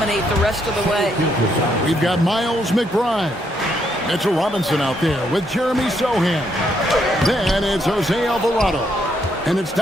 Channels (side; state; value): both; normal; correlation 0.74